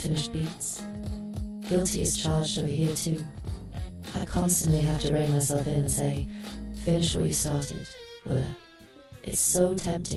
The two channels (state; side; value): identical; both; correlation 1.00